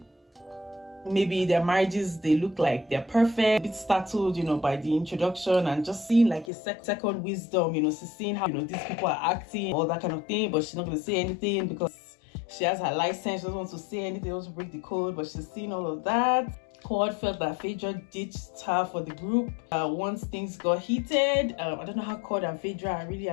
maybe their marriages, they look like they're perfect, a bit startled, you know, by the introduction, and just seeing like a second wisdom, you know, she's seeing how, you know, these people are acting, all that kind of thing, but she's not going to say anything because she has her license. She doesn't want to say anything, doesn't break the code, but she's seeing all of that. Cord felt that Phaedra ditched her for the group once things got heated. I don't know how Cord and Phaedra are really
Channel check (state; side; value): drops out; right; at 6.5 s